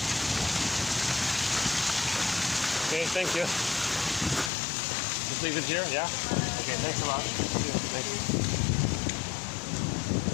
Okay, thank you. Just leave it here, yeah? Okay, thanks a lot. Thank you.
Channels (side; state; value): right; drops out; at 4.5 s